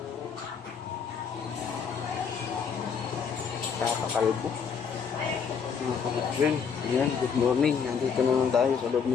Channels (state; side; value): quieter; right; 6.5 dB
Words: Kakakalbo. Mga kapatid, ayan, good morning. Nandito naman tayo sa loob